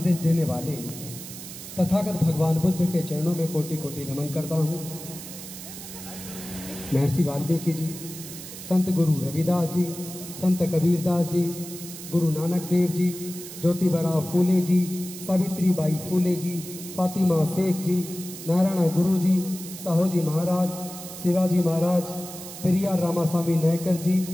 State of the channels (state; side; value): noise; right; hiss, 12 dB below the sound